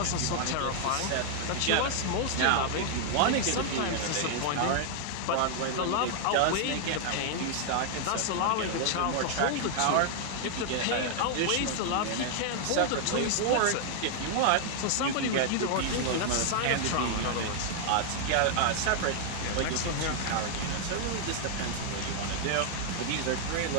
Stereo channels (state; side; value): different; both; correlation 0.00